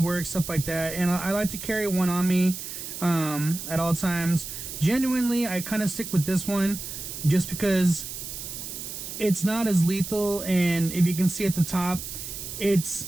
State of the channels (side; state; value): right; noise; hiss, 8 dB below the sound